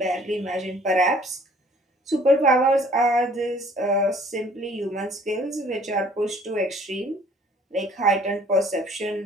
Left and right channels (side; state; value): both; normal; correlation 0.55